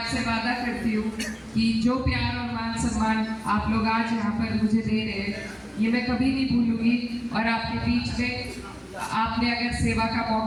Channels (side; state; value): both; identical; correlation 1.00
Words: वादा करती हूँ कि जो प्यार और मान सम्मान आप लोग आज यहाँ पर मुझे दे रहे हैं ये मैं कभी नहीं भूलूंगी। और आपके बीच में आपने अगर सेवा का